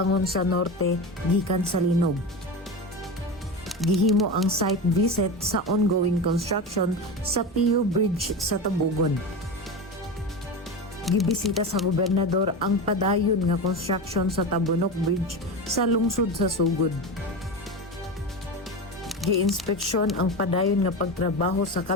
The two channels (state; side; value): normal; both; correlation 0.23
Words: sa norte gikan sa linog. Gihimo ang site visit sa ongoing construction sa PU Bridge sa Tabugon. Gibisita sa gobernador ang Padayon nga construction sa Tabunok Bridge sa lungsod sa Sugod. Gi-inspeksyon ang Padayon nga pagtrabaho sa